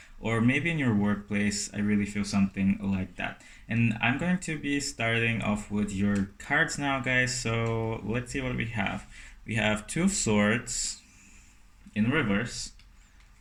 or maybe in your workplace. I really feel something like that. And I'm going to be starting off with your cards now, guys. So let's see what we have. We have 2 of Swords in reverse.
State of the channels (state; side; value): identical; both; correlation 1.00